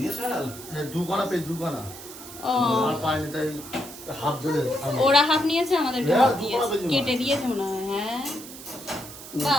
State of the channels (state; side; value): noise; right; hiss, 14 dB below the sound